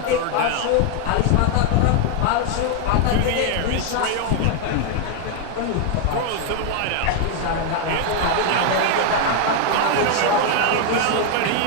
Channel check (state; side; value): different; both; correlation 0.00